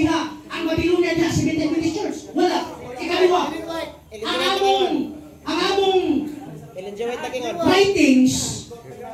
Ang Babylonia diha sa Methodist Church. Wala. Ikaliwa. Ang among writings,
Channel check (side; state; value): both; identical; correlation 1.00